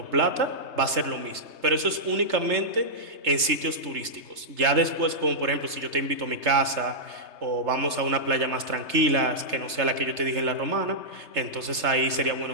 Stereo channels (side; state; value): left; late; 3.3 ms